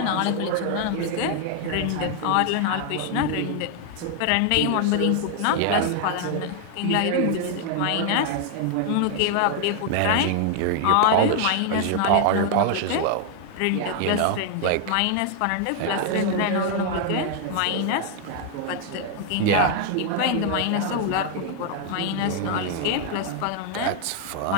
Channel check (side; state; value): both; different; correlation 0.00